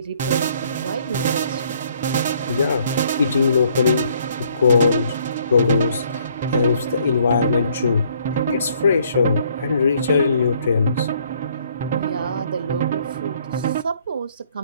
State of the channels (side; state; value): both; inverted; correlation -0.64